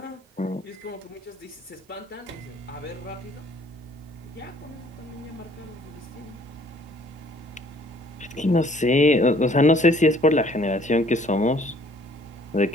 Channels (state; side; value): normal; both; correlation 0.59